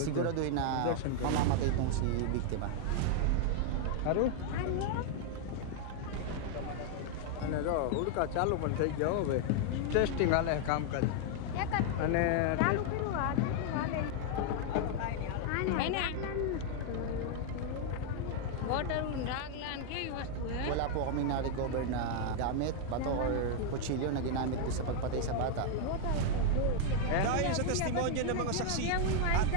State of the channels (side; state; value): both; different; correlation 0.00